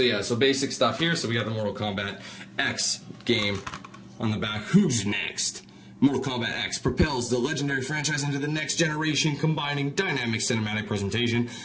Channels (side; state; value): both; identical; correlation 1.00